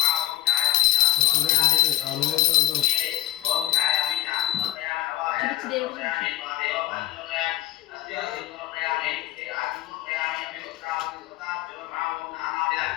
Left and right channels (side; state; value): right; quieter; 14.4 dB